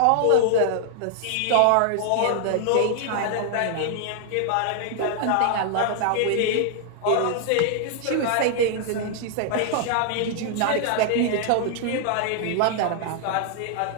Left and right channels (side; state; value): both; different; correlation 0.00